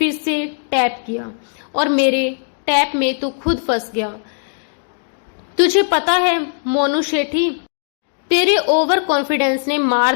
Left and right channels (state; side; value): silent; right; 67 dB below the other